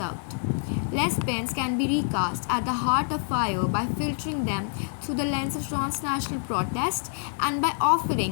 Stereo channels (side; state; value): right; silent; 60 dB below the other